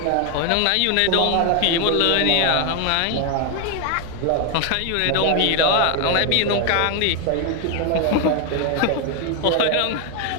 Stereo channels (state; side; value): different; both; correlation 0.01